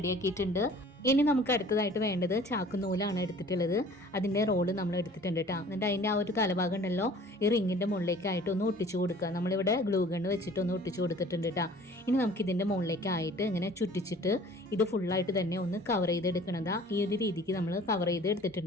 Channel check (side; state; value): both; normal; correlation 0.49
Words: ഇനി നമുക്ക് അടുത്തതായിട്ട് വേണ്ടത് ചാക്കുനൂലാണ് എടുത്തിട്ടുള്ളത്. അതിൻ്റെ റോള് നമ്മൾ എടുത്തിട്ടുണ്ട് കേട്ടോ. എന്നിട്ട് അതിൻ്റെ ആ ഒരു തലഭാഗം ഉണ്ടല്ലോ, ഈ റിങ്ങിൻ്റെ മുകളിലേക്കായിട്ട് ഒന്ന് ഒട്ടിച്ചു കൊടുക്കുക. നമ്മളിവിടെ ഗ്ലൂ ഗണ്ണ് വെച്ചിട്ട് ഒന്ന് ഒട്ടിച്ചു കൊടുത്തിട്ടുണ്ട് കേട്ടോ. ഇനി നമുക്ക് ഇതിൻ്റെ മുകളിലേക്കായിട്ട് ഇങ്ങനെ ചുറ്റിച്ചിട്ട് ഇത് ഫുള്ളായിട്ട് തന്നെ ഒന്ന് കവർ ചെയ്തെടുക്കണതാ. ഈ ഒരു രീതിക്ക് നമ്മൾ കവർ ചെയ്ത്